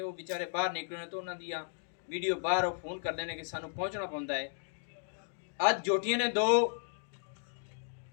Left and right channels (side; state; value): right; silent; digital silence